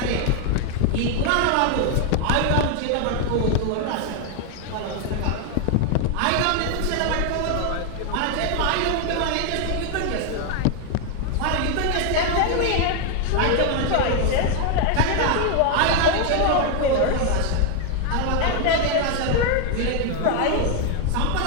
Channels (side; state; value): both; different; correlation 0.01